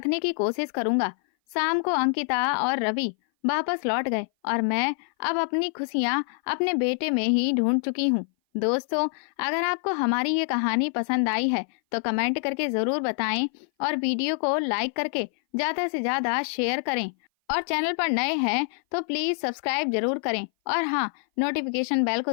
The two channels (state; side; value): silent; right; 58 dB below the other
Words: की कोशिश करूंगा। शाम को अंकिता और रवि वापस लौट गए और मैं अब अपनी खुशियां अपने बेटे में ही ढूंढ चुकी हूँ। दोस्तों, अगर आपको हमारी ये कहानी पसंद आई है तो कमेंट करके जरूर बताएं और वीडियो को लाइक करके ज्यादा से ज्यादा शेयर करें। और चैनल पर नए हैं तो प्लीज सब्सक्राइब जरूर करें और हाँ, नोटिफिकेशन बेल